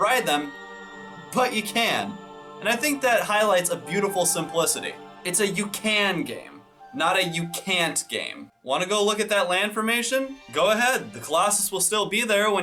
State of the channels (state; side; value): identical; both; correlation 1.00